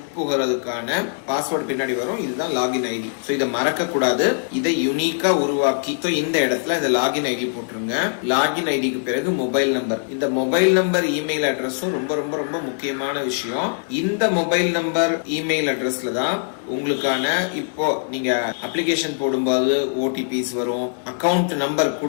பாஸ்வேர்டு பின்னாடி வரும். இதுதான் லாகின் ஐடி. சோ இதை மறக்க கூடாது. இதை யூனிக்கா உருவாக்கி இந்த இடத்துல இந்த லாகின் ஐடி போட்டுருங்க. லாகின் ஐடிக்கு பிறகு மொபைல் நம்பர். இந்த மொபைல் நம்பர் இமெயில் அட்ரஸும் ரொம்ப ரொம்ப ரொம்ப முக்கியமான விஷயம். இந்த மொபைல் நம்பர் இமெயில் அட்ரஸ்ல தான் உங்களுக்கான இப்போ நீங்க அப்ளிகேஷன் போடும்போது ஓடிபிஸ் வரும், அக்கவுண்ட் நம்பர்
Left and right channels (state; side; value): silent; right; digital silence